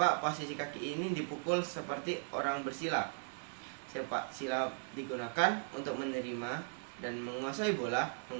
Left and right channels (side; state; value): left; silent; 53 dB below the other